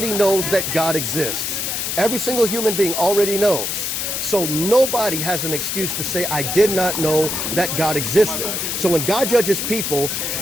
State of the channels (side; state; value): left; noise; hiss, 2 dB below the sound